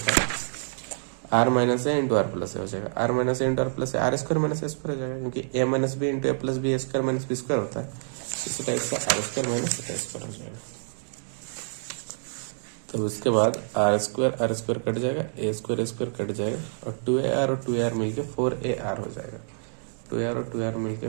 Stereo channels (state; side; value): silent; left; 60 dB below the other